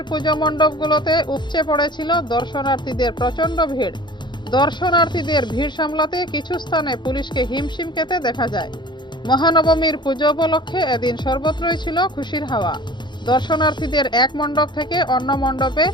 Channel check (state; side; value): late; right; 0.22 ms